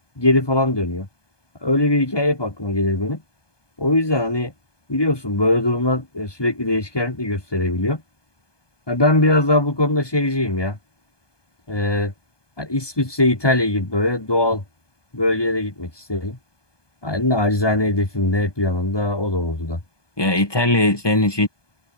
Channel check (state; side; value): late; right; 1.2 ms